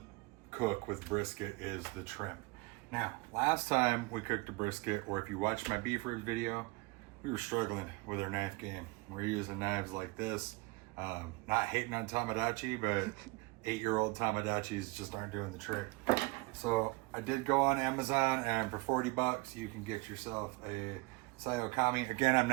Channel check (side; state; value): left; quieter; 25.0 dB